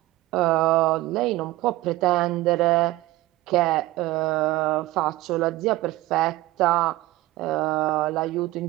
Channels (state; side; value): quieter; left; 17.9 dB